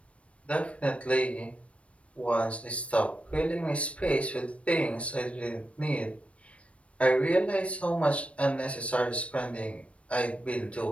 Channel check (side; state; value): right; late; 0.062 ms